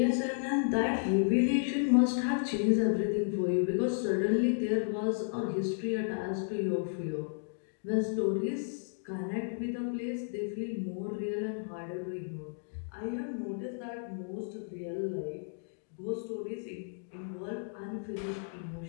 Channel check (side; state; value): right; silent; digital silence